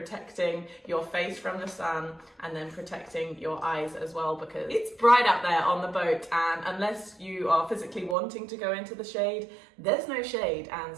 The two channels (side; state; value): left; drops out; at 8.2 s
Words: your face from the sun and then protecting your eyes as well, because it's bright out there on the boat, and unless you are physically wanting to go into the shade, there's no shade, and